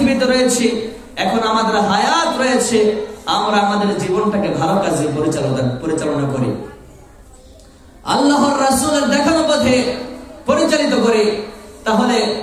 রয়েছি, এখন আমাদের হায়াত রয়েছে, আমরা আমাদের জীবনটাকে ভালো কাজে পরিচালনা করি, আল্লাহর রাসূলের দেখানো পথে পরিচালিত করি। তাহলে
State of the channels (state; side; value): identical; both; correlation 1.00